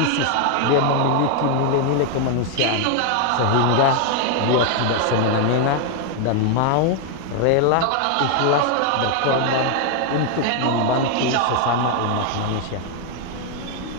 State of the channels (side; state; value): both; different; correlation 0.00